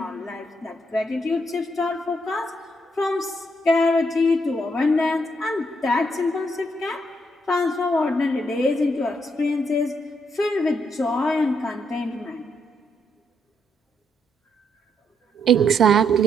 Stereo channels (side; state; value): both; normal; correlation 0.76